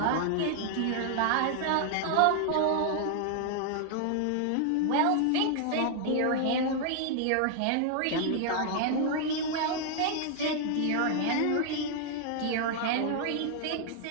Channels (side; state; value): both; different; correlation 0.00